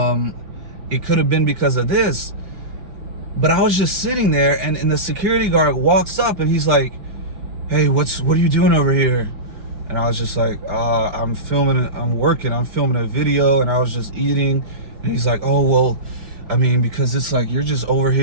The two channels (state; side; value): late; left; 5.2 ms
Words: could have been because of this. But I was just sitting there, and the security guard walks up, and he's like, hey, what are you doing over here? And I was just like, I'm filming a video, and I was just eating. And he's like, oh, well, I mean, because it's like, you're just over